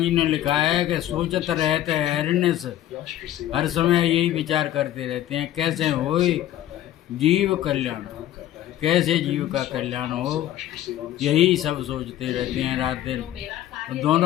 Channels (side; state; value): right; quieter; 12.9 dB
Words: ने लिखा है कि सोचत रहते हरिनिश, हर समय यही विचार करते रहते हैं कैसे हो जीव कल्याण, कैसे जीव का कल्याण हो, यही सब सोचते रहते हैं रात दिन। तो